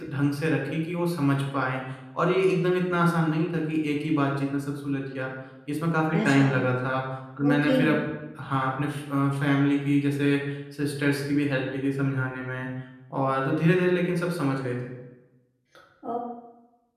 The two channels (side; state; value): both; identical; correlation 1.00